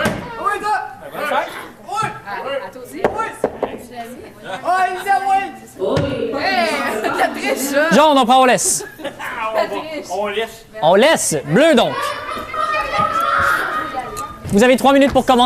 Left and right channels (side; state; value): both; identical; correlation 1.00